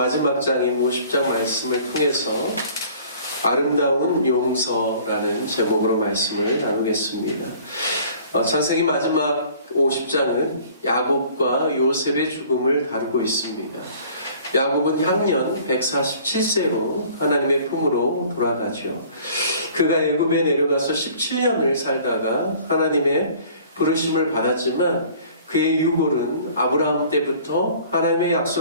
장인 50장 말씀을 통해서 아름다운 용서라는 제목으로 말씀을 나누겠습니다. 창세기 마지막 50장은 야곱과 요셉의 죽음을 다루고 있습니다. 야곱은 향년 147세로 하나님의 품으로 돌아가죠. 그가 애굽에 내려가서 17년을 살다가 하나님의 부르심을 받았지만 그의 유골은 아브라함 때부터 하나님의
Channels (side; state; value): both; inverted; correlation -0.51